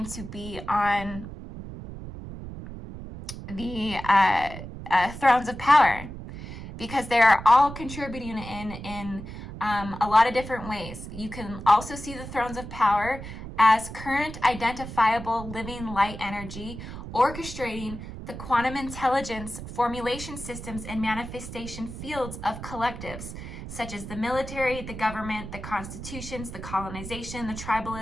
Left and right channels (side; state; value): right; noise; rumble, 10 dB below the sound